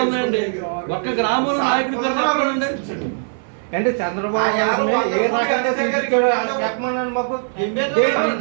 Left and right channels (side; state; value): left; silent; 59 dB below the other